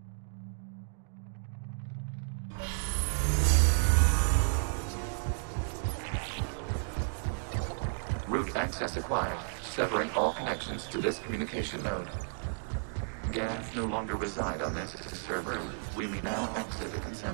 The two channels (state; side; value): silent; left; digital silence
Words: Route access acquired, severing all connections to this communication node. Geth no longer reside on this server. We may now exit the